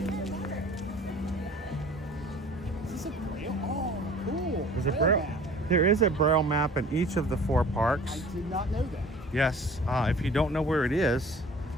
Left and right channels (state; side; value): normal; both; correlation 0.47